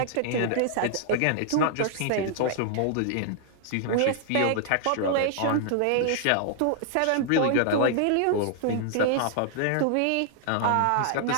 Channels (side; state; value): both; different; correlation -0.01